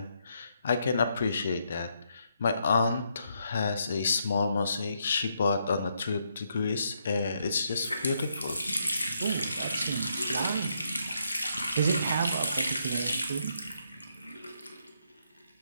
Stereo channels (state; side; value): inverted; both; correlation -0.76